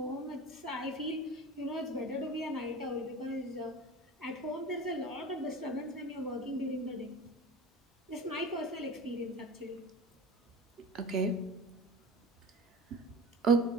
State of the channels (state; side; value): normal; both; correlation 0.35